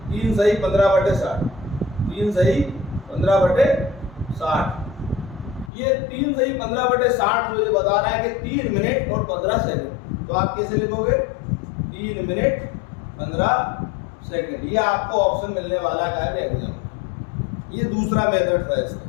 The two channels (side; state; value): right; drops out; at 5.7 s